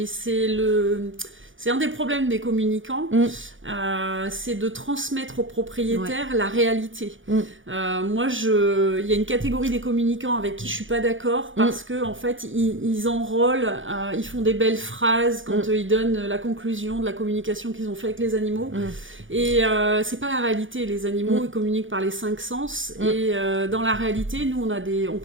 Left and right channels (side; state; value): left; late; 0.57 ms